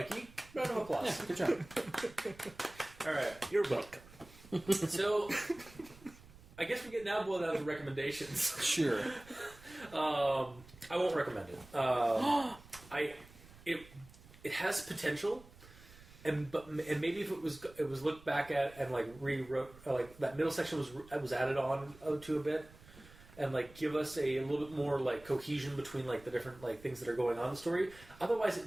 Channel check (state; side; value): noise; right; rumble, 21 dB below the sound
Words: Round of applause. Yeah, good job. All right. You're welcome. So, I guess we get now boiled down to recommendations. Sure. I won't recommend it. It has potential, and maybe if it was looked back at and like rewrote, like that middle section was added on to a bit. And like give us a little bit more like cohesion between like the different like things that are going on in the story. Otherwise,